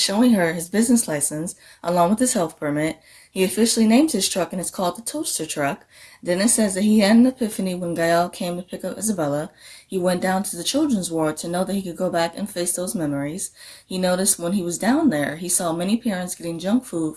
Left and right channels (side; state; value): both; identical; correlation 1.00